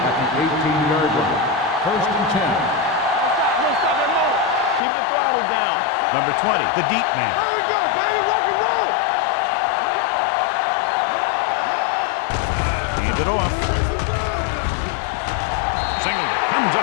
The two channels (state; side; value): drops out; right; at 4.8 s